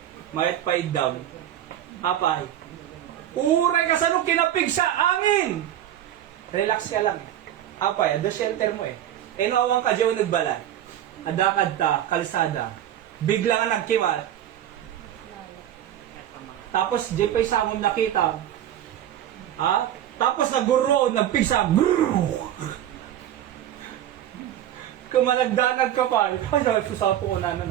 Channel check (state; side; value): quieter; left; 11.5 dB